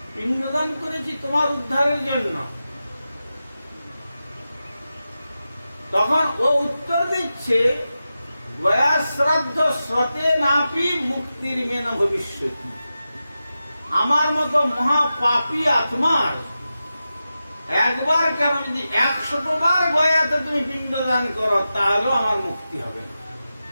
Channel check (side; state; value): both; inverted; correlation -0.92